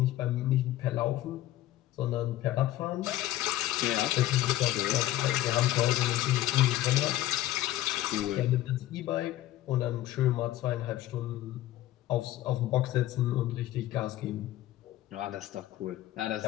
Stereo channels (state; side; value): quieter; right; 14.6 dB